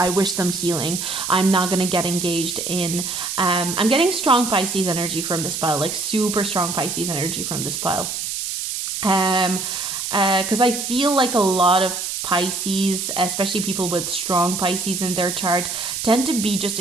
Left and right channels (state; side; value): noise; right; hiss, 4 dB below the sound